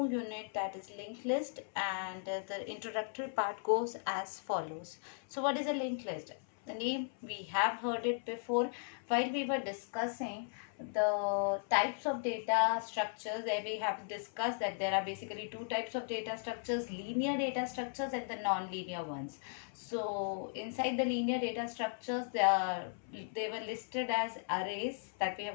unit, that is linked list, and the introductory part goes as follows. So what is a linked list? The name, we have heard it before while we were discussing the types of data structures. There we have discussed that there are basically two types of data structures, linear data structures and the non-linear ones. So inside the linear data structures, they were listed as arrays that we have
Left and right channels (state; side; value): silent; right; 53 dB below the other